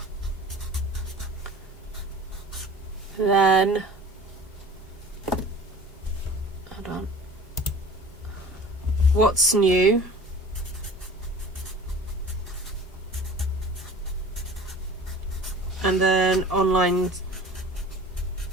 then hold on, what's new, and then online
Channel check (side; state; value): both; normal; correlation 0.42